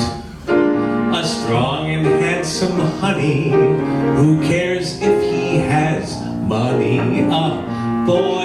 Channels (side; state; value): both; identical; correlation 1.00